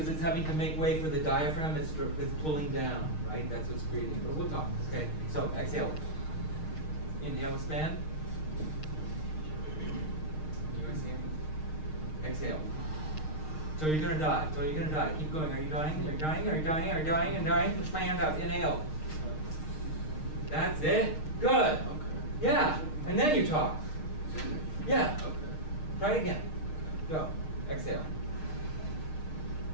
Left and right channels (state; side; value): late; right; 6.5 ms